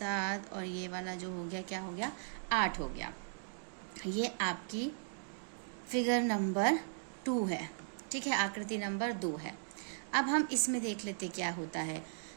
और ये वाला जो हो गया क्या हो गया, 8 हो गया। ये आपकी फिगर नंबर 2 है। ठीक है, आकृति नंबर 2 है। अब हम इसमें देख लेते क्या होता है।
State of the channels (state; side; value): silent; left; digital silence